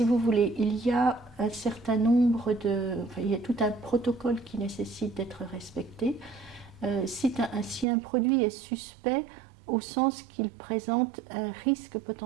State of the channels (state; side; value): drops out; left; at 7.9 s